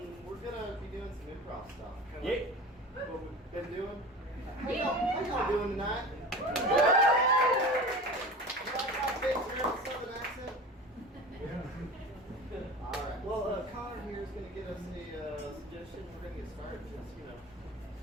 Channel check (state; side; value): normal; both; correlation 0.35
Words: we're gonna be doing some improv stuff. Yeah. What we've been doing. How y'all doing tonight? You like my big Southern accent? All right. Well, Connor here is gonna give us a suggestion. We're gonna get started. Just